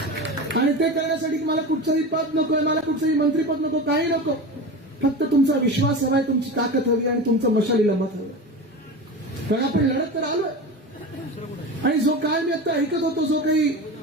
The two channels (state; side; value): normal; both; correlation 0.28